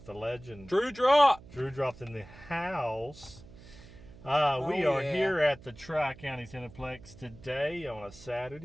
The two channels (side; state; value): right; noise; hum, 20 dB below the sound